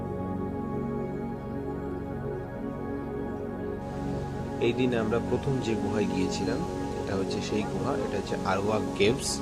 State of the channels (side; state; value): both; identical; correlation 1.00